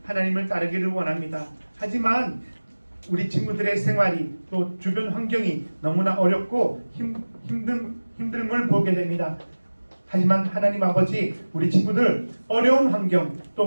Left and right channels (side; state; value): both; inverted; correlation -1.00